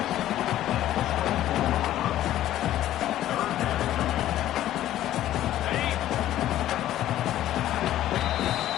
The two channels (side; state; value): right; quieter; 13.1 dB